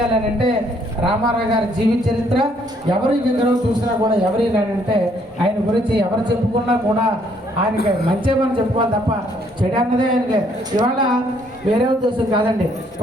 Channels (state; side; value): normal; both; correlation 0.67